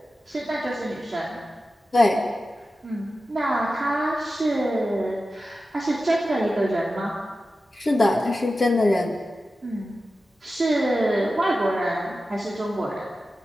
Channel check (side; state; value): both; normal; correlation 0.93